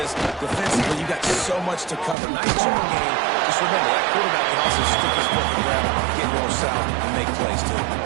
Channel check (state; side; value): drops out; left; at 2.1 s